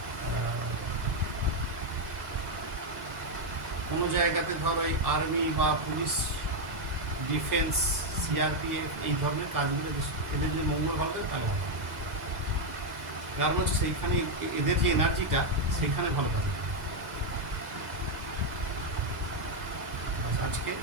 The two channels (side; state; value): left; late; 2.0 ms